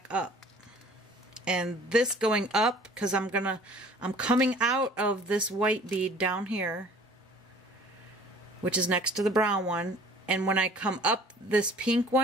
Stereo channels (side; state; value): both; normal; correlation 0.50